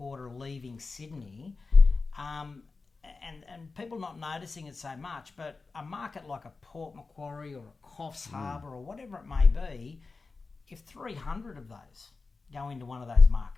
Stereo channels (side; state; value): right; quieter; 4.1 dB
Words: leaving Sydney. And people not noticing it so much. But a market like a Port Macquarie or a Coffs Harbour or whatever it may be, if 300 of those go into one of those